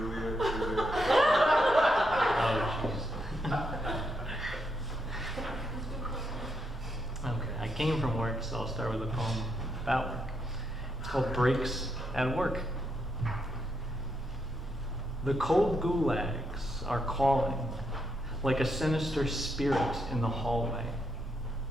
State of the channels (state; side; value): normal; both; correlation 0.80